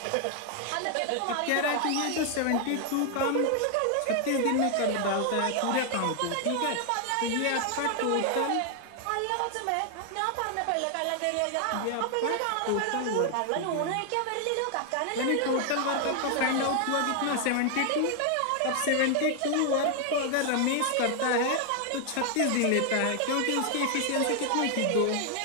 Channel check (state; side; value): different; both; correlation 0.00